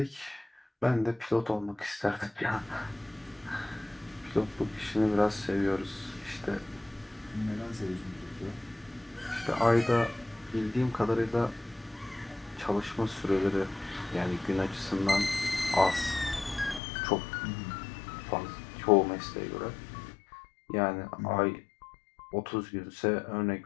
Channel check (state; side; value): drops out; right; at 16.8 s